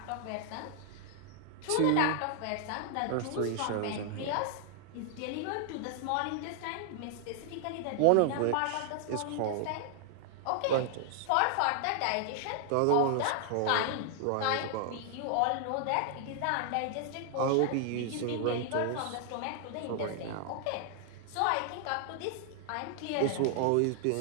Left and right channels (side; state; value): both; different; correlation 0.00